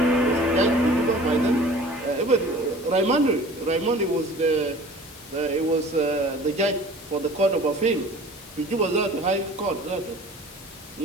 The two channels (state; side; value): noise; left; hiss, 19 dB below the sound